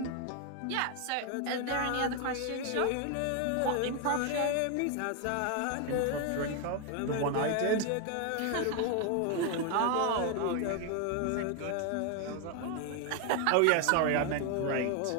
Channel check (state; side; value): different; both; correlation 0.01